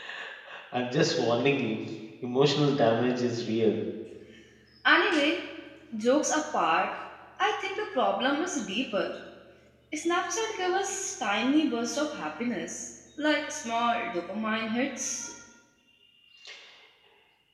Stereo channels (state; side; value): identical; both; correlation 1.00